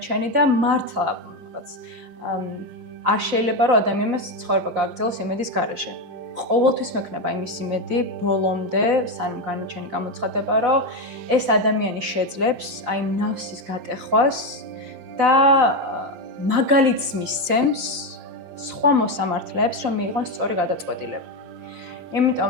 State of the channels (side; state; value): left; late; 5.7 ms